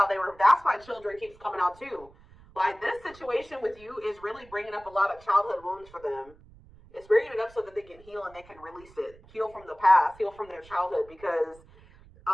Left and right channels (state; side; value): noise; right; rumble, 24 dB below the sound